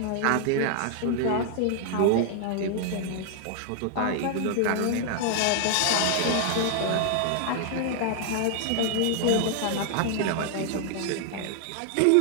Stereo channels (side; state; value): both; different; correlation 0.00